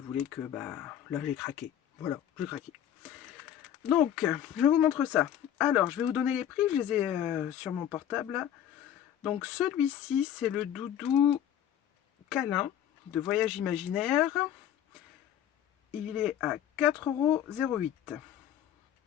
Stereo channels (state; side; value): quieter; right; 10.4 dB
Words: que, bah, là, j'ai craqué. Voilà, j'ai craqué. Donc, je vous montre ça. Alors, je vais vous donner les prix. Je les ai sur mon portable, là. Donc, celui-ci, c'est le doudou câlin de Voyage Imaginaire. Il est à 4,08 €.